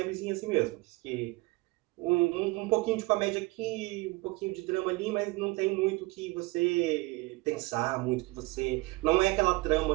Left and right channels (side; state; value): left; quieter; 23.6 dB